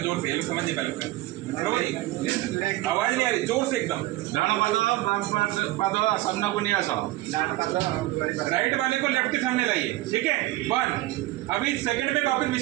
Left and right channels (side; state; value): left; quieter; 17.8 dB